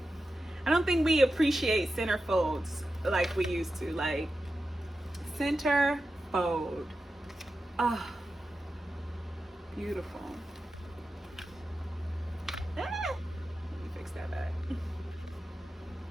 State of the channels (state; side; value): normal; both; correlation 0.91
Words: I don't think we appreciate center folds like we used to. Like, center fold. Oh, beautiful. Ah, let me fix that back.